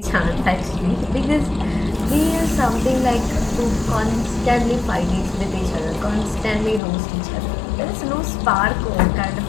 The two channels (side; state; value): right; drops out; at 6.8 s